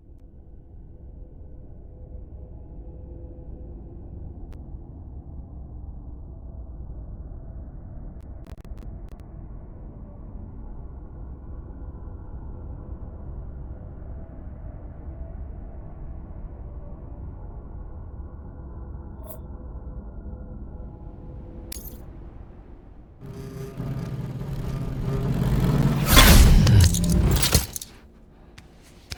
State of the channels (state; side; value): identical; both; correlation 1.00